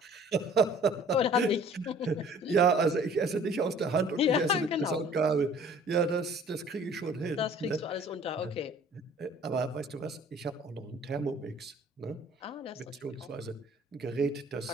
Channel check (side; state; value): both; normal; correlation 0.52